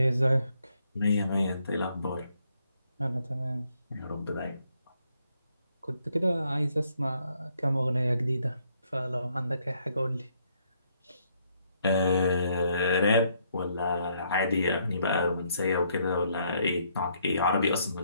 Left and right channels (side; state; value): both; inverted; correlation -0.72